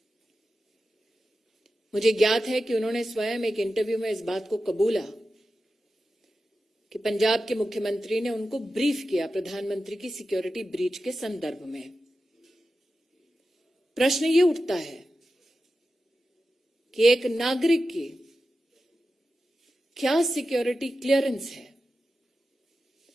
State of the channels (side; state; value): both; normal; correlation 0.92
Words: मुझे ज्ञात है कि उन्होंने स्वयं एक इंटरव्यू में इस बात को कबूला कि पंजाब के मुख्यमंत्री ने उनको ब्रीफ किया प्रधानमंत्री की सिक्योरिटी ब्रीच के संदर्भ में। प्रश्न ये उठता है कि एक नागरिक की क्या सिक्योरिटी क्लियरेंस है